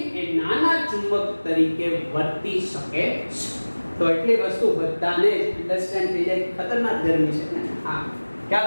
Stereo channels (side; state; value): both; inverted; correlation -1.00